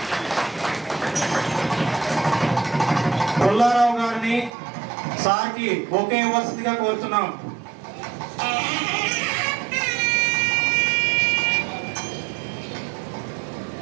పుల్లారావు గారిని సార్కి బొకే ఇవ్వాల్సిందిగా కోరుతున్నాం.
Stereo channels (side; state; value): left; drops out; at 4.5 s